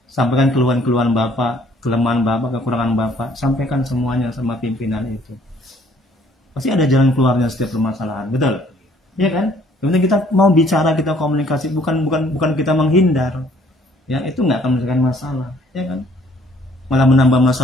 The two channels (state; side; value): normal; both; correlation 0.60